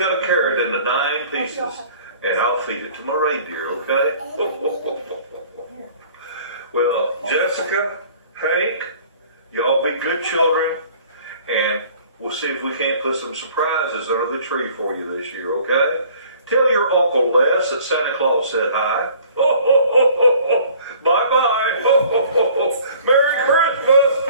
a carrot into 9 pieces and I'll feed it to my reindeer, okay? Well, Jessica, Hank, y'all be good children, and we'll see if we can't put some surprises under the tree for you this year, okay? Tell your Uncle Les that Santa Claus said hi. Bye-bye. Merry Christmas.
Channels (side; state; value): both; inverted; correlation -0.51